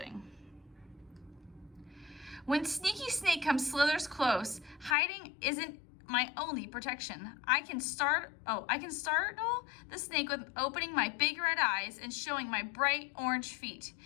When Sneaky Snake slithers close, hiding isn't my only protection. I can startle the snake with opening my big red eyes and showing my bright orange feet.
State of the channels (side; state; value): right; drops out; at 5.0 s